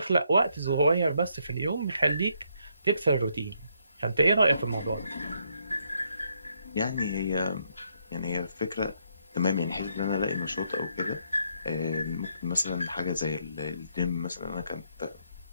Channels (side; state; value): both; inverted; correlation -0.74